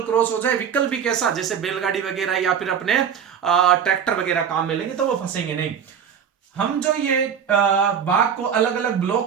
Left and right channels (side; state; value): left; quieter; 7.8 dB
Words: क्रॉस हो जाए। व्हीकल भी कैसा, जैसे बैलगाड़ी वगैरह या फिर अपने ट्रैक्टर वगैरह काम में लेंगे तो वो फंसेंगे नहीं। हम जो ये बाग को अलग अलग